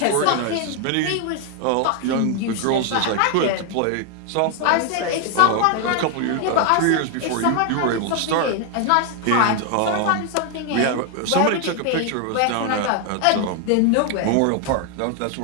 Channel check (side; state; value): both; different; correlation 0.01